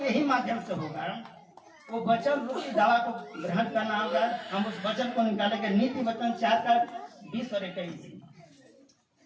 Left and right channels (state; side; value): identical; both; correlation 1.00